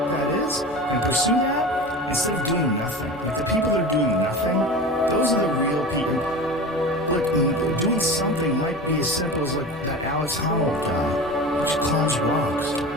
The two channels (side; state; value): both; normal; correlation 0.32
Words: that is and pursue that instead of doing nothing. Like the people that are doing nothing, those are the real people. Look, doing something might be as simple as like that Alex Honnold guy, which climbs rocks,